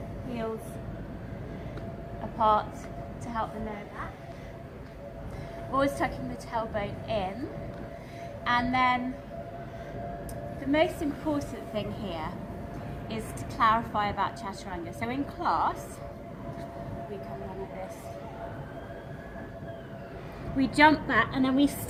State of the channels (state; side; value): identical; both; correlation 1.00